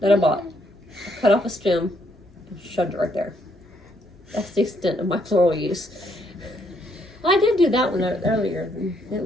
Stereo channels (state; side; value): normal; both; correlation 0.72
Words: that I bought. I cut off a stem and shoved it right there. That's the extent of my floral use. Well, I did do that one earlier. It